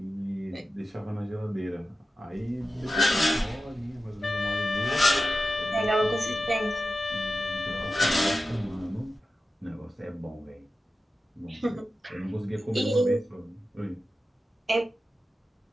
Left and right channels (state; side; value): normal; both; correlation 0.93